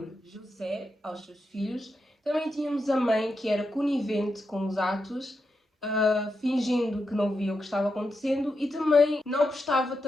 José aos seus filhos, também tínhamos a mãe que era conivente com os atos, fingindo que não via o que estava acontecendo e também não prestava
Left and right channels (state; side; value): normal; both; correlation 0.86